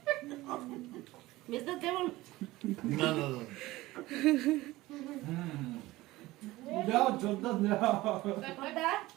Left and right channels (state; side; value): quieter; left; 18.5 dB